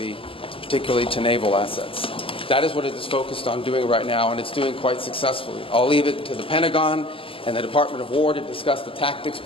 particularly to naval assets. That is what it is focused on doing right now, and it's doing quite successfully. I'll leave it to the Pentagon and the Department of War to discuss the tactics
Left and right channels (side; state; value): right; late; 0.26 ms